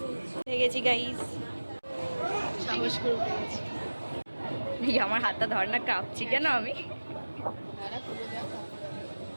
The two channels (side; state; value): both; inverted; correlation -1.00